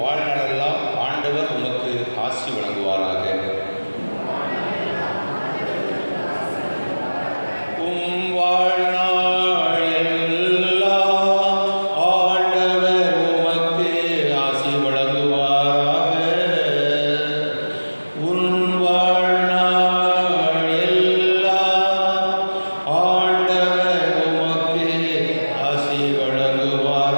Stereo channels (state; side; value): inverted; both; correlation -1.00